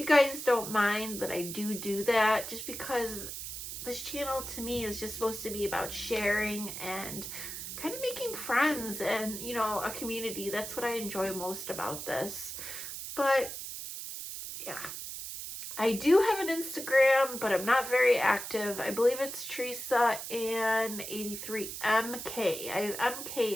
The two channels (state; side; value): noise; right; hiss, 7 dB below the sound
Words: guys don't mind that I do that, just because this channel to me is just supposed to be about sharing and kind of making friends and, you know, a community. That's what I enjoy most about this. But yeah, I do have an Instagram, but I'm not very active. I believe it's Teresa and 83MK. I have